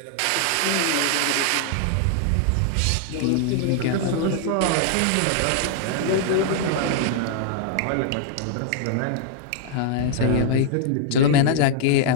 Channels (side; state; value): both; different; correlation -0.01